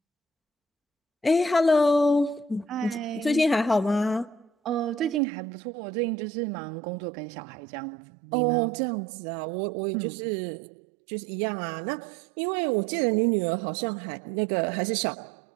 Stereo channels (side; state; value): left; drops out; at 5.2 s